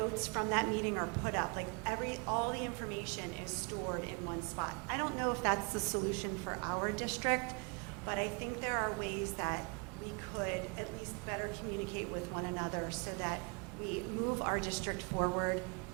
from that meeting are put up. Like all the information is stored in one spot. I don't know if that's the solution for our district, but I think there are ways that we could at least better communicate with one another so that we move our district forward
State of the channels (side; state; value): left; quieter; 34.5 dB